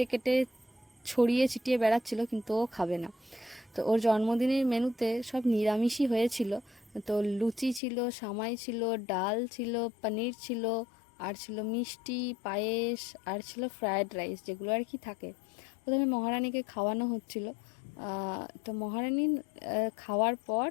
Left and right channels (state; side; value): drops out; right; at 7.8 s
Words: কেটে ছড়িয়ে ছিটিয়ে বেড়াচ্ছিল, কিন্তু ও খাবে না। তো ওর জন্মদিনের মেনুতে সব নিরামিষই হয়েছিল। তো লুচি ছিল, সামাই ছিল, ডাল ছিল, পনির ছিল, আর ছিল মিষ্টি, পায়েস, আর ছিল ফ্রায়েড রাইস, যেগুলো আর কি থাকে। প্রথমে মহারানীকে খাওয়ানো হচ্ছিল। তো মহারানী খাওয়ার পর